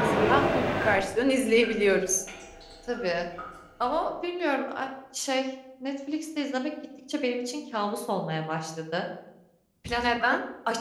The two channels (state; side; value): identical; both; correlation 1.00